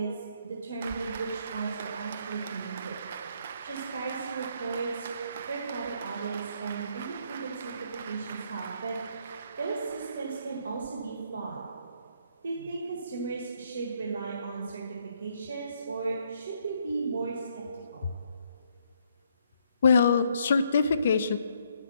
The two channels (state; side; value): inverted; both; correlation -0.71